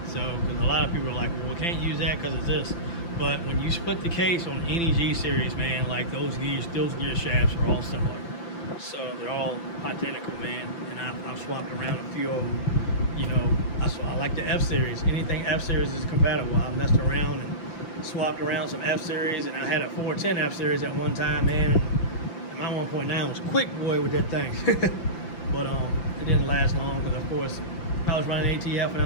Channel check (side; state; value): right; late; 5.9 ms